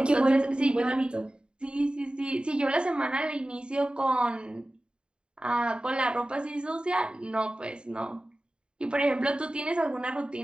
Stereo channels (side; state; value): left; late; 0.051 ms